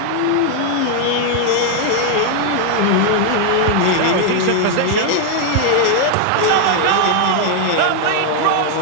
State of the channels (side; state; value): both; different; correlation 0.00